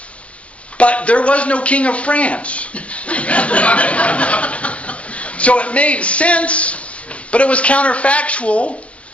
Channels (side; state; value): right; late; 0.063 ms